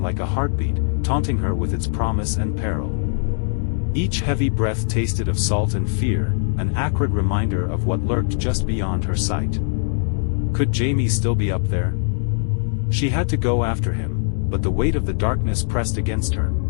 like a heartbeat, taunting her with its promise and peril. Each heavy breath tasted of salt and fear, an acrid reminder of what lurked just beyond her sight. Could Jamie still be up there? She had to go after him, but the weight of the darkness pressed against her,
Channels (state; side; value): silent; right; digital silence